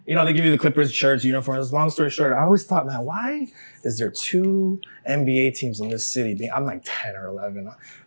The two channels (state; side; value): inverted; both; correlation -1.00